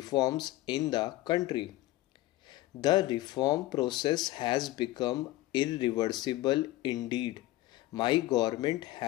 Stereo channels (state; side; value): quieter; right; 17.1 dB